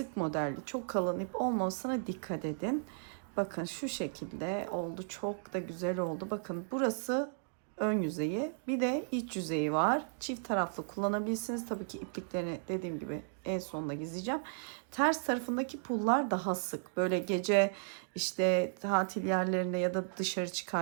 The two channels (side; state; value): left; silent; digital silence